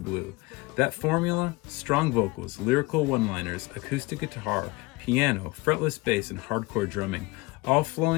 That formula? Strong vocals, lyrical one-liners, acoustic guitar, piano, fretless bass, and hardcore drumming, all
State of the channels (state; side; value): quieter; right; 23.3 dB